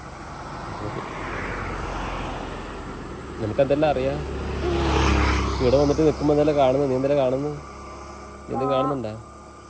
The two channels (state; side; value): identical; both; correlation 1.00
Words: നിനക്കെന്തെല്ലാം അറിയാം? ഇവിടെ വന്നിട്ട് നിൽക്കുമ്പോ എന്തെല്ലാം കാണുന്നു? നീ എന്തെല്ലാം കാണുന്നു? നീ എന്തും കാണുന്നുണ്ടാ?